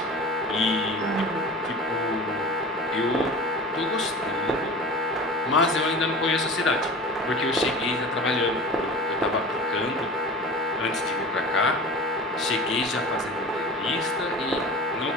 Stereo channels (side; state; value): both; normal; correlation 0.35